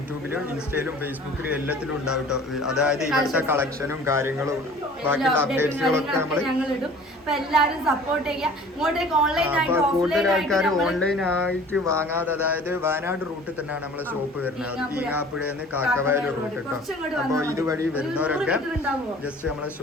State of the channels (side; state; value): both; normal; correlation 0.47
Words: ഇൻസ്റ്റയിലും ഫേസ്ബുക്കിലും എല്ലാത്തിലും ഉണ്ടാവും ട്ടോ. അതായത് ഇവിടുത്തെ കളക്ഷനും കാര്യങ്ങളും ബാക്കിയുള്ള അപ്ഡേറ്റ്സുകളൊക്കെ നമ്മള് ഞങ്ങൾ ഇടും. അപ്പൊ എല്ലാരും സപ്പോർട്ട് ചെയ്യുക. ഇങ്ങോട്ടേക്ക് ഓൺലൈൻ ആയിട്ട് കൂടുതൽ ഓഫ്ലൈൻ ആൾക്കാർ ആയിട്ട് ഓൺലൈൻ ആയിട്ട് വാങ്ങാതെ, അതായത് വയനാട് റൂട്ടിൽ തന്നെയാണ് നമ്മളെ ഷോപ്പ് വരുന്നത്. ഈങ്ങാപ്പുഴന്ന് കാക്കവയൽ റൂട്ട് കേട്ടോ. അപ്പൊ ഇതുവഴി വരുന്നവരൊക്കെ ജസ്റ്റ് നമ്മളെ